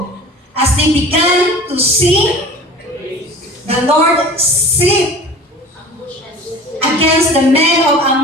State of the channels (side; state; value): both; normal; correlation 0.42